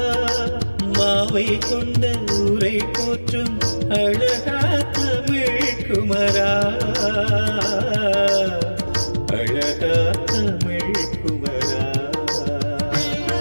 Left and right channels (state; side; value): inverted; both; correlation -1.00